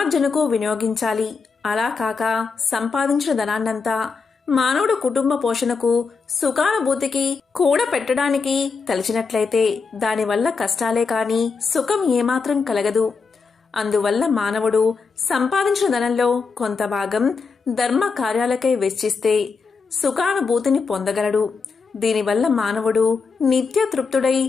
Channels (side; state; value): right; quieter; 4.9 dB